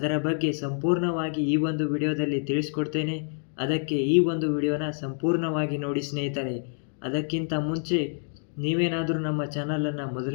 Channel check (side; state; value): right; silent; 60 dB below the other